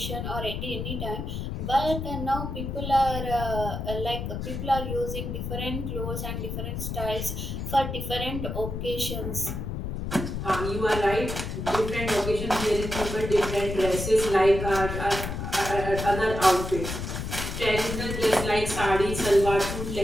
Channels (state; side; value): noise; left; rumble, 4 dB below the sound